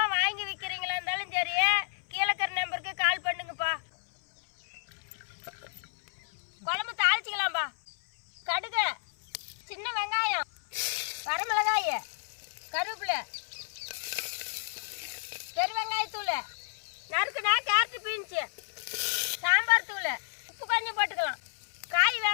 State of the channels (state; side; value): silent; right; 57 dB below the other